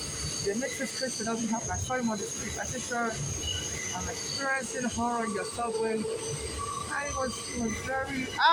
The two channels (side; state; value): both; identical; correlation 1.00